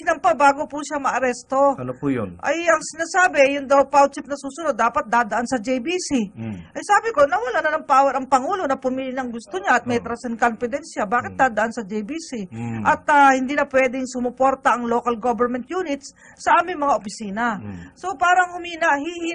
bago po siya maaresto. Ano po yun? Ay ang sinasabi, yung daw PAO chief na susunod, dapat dadaan sa JBC. Ay sabi ko, nawala na ng power ang Pangulo na pumili ng gusto niya at may trust and confidence siya. Bakit dadaan sa JBC? At hindi na pwedeng sumuporta ang local government units sa aming mga opisina. So parang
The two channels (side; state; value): both; identical; correlation 1.00